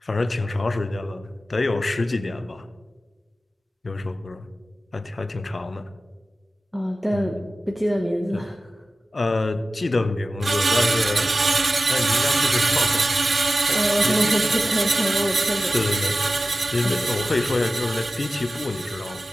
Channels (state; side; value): normal; both; correlation 0.94